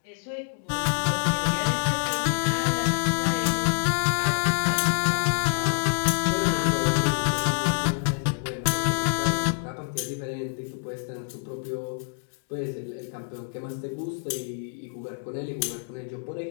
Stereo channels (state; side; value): silent; right; digital silence